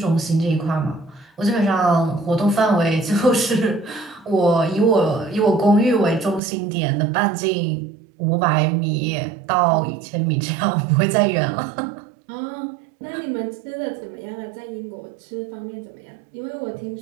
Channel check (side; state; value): left; drops out; at 6.4 s